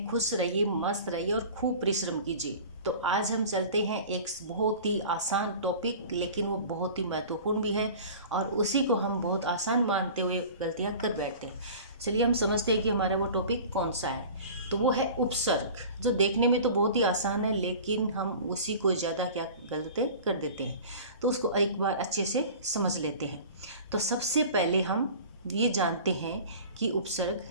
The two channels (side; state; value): both; inverted; correlation -0.40